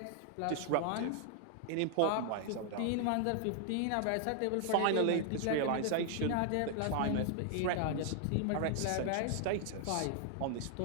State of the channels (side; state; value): both; different; correlation 0.00